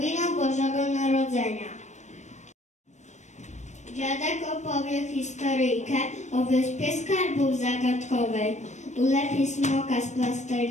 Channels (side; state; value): right; late; 0.34 ms